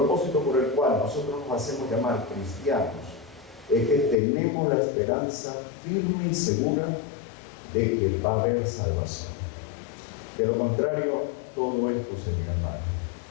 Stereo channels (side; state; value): right; drops out; at 4.2 s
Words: por el cual nosotros nos hacemos llamar cristianos, es que tenemos la esperanza firme y segura de que va a haber salvación. De lo contrario, todo esto sería mal.